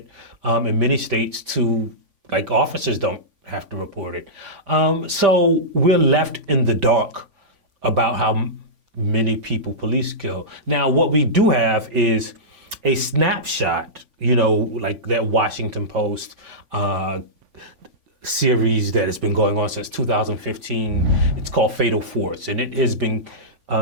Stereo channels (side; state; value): left; late; 3.5 ms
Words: in many states to, officers don't have to report it. So we're left in the dark about how many people police kill. Now, what we do have is a snapshot, like that Washington Post series that has been going on since 2015. It's called Fatal Force, and it has been,